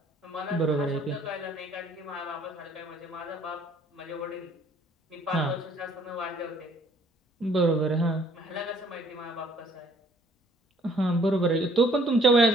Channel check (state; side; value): normal; both; correlation 0.61